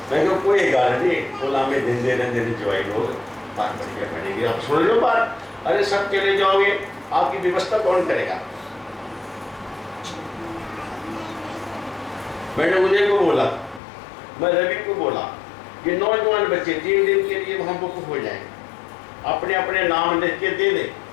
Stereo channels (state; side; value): drops out; right; at 13.8 s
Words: मैं कहा कोई गाल नहीं, बोला में दिन दे ज्वाई लोग बात बढ़िया पड़ेगी, आप सुन लो बात। अरे सब चले जाओगे, आपकी व्यवस्था कौन करेगा। मैंने उदय को बोला, मैं रवि को बोला, ये नौजवान बच्चे 3 दिन के लिए वहां बुक हो जाए, अपने अपने नाम लिख के दे दें,